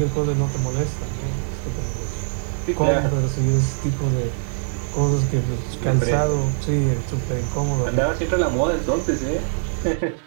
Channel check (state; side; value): silent; left; digital silence